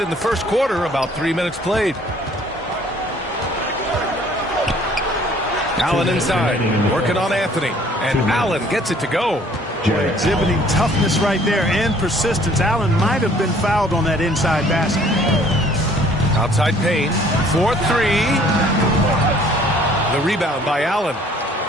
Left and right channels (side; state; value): both; normal; correlation 0.57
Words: in the first quarter, about 3 minutes played. Allen inside, working on Anthony. And Allen gets it to go. Exhibiting toughness right there and persistence. Allen might have been fouled on that inside basket. Outside Payne. 4-3. The rebound by Allen.